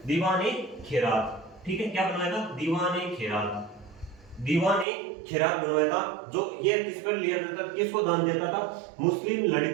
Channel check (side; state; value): left; drops out; at 4.9 s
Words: दीवान ए खिरात। ठीक है, क्या बनवाया था? दीवान ए खिरात बनवाया था। जो ये किस पर लिया जाता था? किसको दान देता था? मुस्लिम